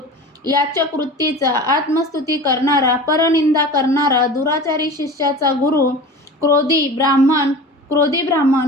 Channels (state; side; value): normal; both; correlation 0.35